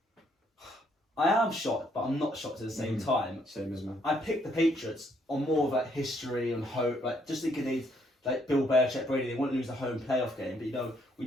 I am shocked, but I'm not shocked at the same time. Same as me. I picked the Patriots on more of like history and hope, like just thinking they'd like Bill Belichick, Brady, they wouldn't lose a home playoff game. But you know, we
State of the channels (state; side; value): normal; both; correlation 0.70